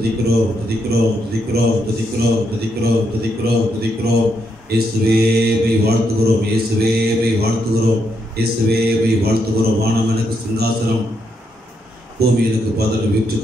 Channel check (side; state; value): both; normal; correlation 0.79